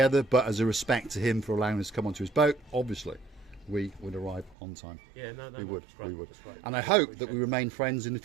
but as a respect to him for allowing us to come onto his boat, obviously, we would arrive on time. Yeah, we would. That's great. We would. That's great. And I hope that we remain friends in the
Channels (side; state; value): left; drops out; at 4.5 s